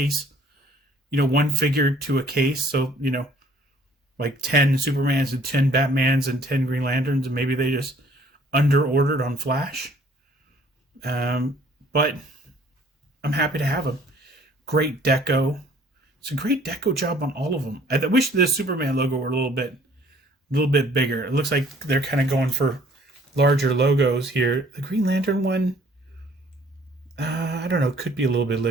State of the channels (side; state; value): both; normal; correlation 0.57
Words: one figure to a case. So, like 10 Supermans and 10 Batmans and 10 Green Lanterns, and maybe they just under ordered on Flash. But I'm happy to have them. Great deco. It's a great deco job on all of them. I wish the Superman logo were a little bit bigger. It looks like they're kind of going for larger logos here. The Green Lantern one, I don't know, could be a little